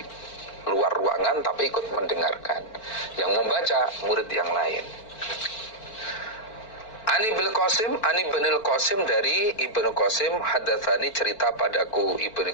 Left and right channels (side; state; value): right; late; 4.4 ms